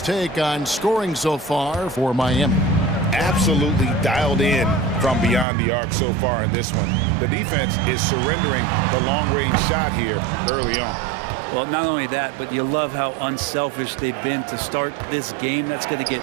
take on scoring so far for Miami. Absolutely dialed in from beyond the arc so far in this one. The defense is surrendering the long-range shot here early on. Well, not only that, but you love how unselfish they've been to start this game. That's going to get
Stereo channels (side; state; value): left; drops out; at 5.5 s